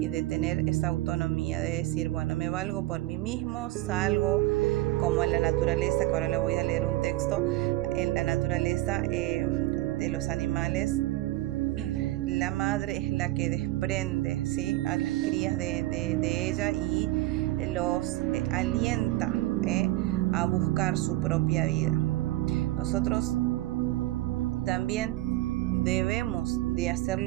de tener esa autonomía, de decir, bueno, me valgo por mí mismo, salgo, como en la naturaleza, que ahora le voy a leer un texto. En la naturaleza de los animales, la madre es la que desprende, ¿sí?, a las crías de ella y los alienta a buscar su propia vida. Nosotros también debemos de hacer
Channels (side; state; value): left; quieter; 17.6 dB